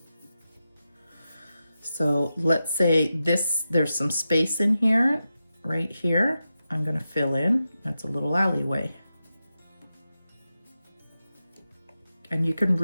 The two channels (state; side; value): inverted; both; correlation -0.91